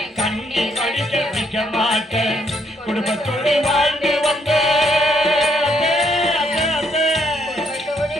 கண்ணீர் வடிக்க வைக்க மாட்டேன். குடும்பத்தோடு வாழ்ந்து வந்த,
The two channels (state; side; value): normal; both; correlation 0.71